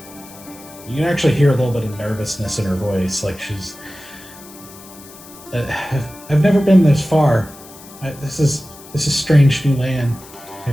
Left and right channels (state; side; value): noise; left; hiss, 20 dB below the sound